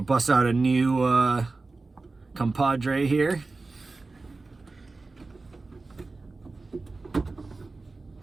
out a new compadre here.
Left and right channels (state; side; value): quieter; left; 3.6 dB